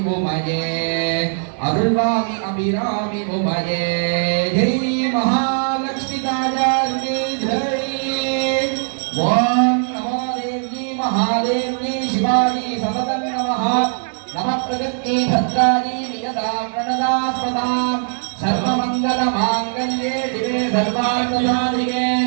உமையே அருள்வாமி அபிராமி உமையே ஜெய் மகாலட்சுமி தாயாருக்கு ஜெய் ஓம் நமோ தேவி மகாதேவி சிவாஜி சததம் நமः நம பிரகத்தி பத்ராஜி நியதா பிரணதாஸ்பதாம் सर्वमंगल मांगल्ये शिवे सर्वार्थसाधिके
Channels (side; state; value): left; silent; digital silence